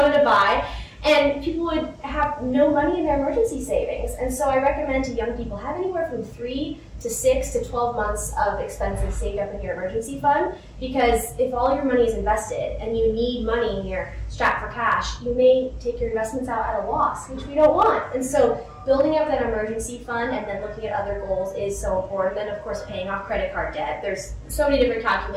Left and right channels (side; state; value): both; identical; correlation 1.00